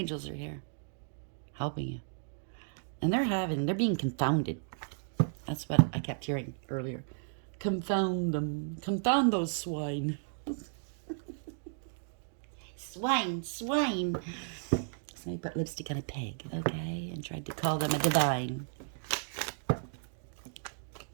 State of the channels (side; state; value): left; silent; digital silence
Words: are here, helping you. And they're being confounded. That's what I kept hearing earlier. Confound them. Confound those swine. Swine, swine. Somebody put lipstick on a pig, okay? And tried to call them a divine.